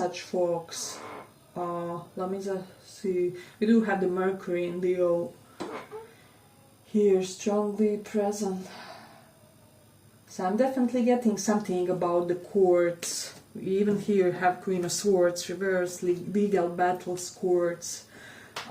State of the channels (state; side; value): identical; both; correlation 1.00